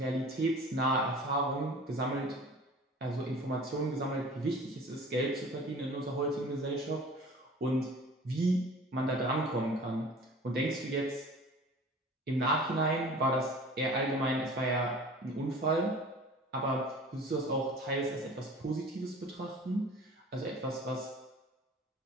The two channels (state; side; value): normal; both; correlation 0.44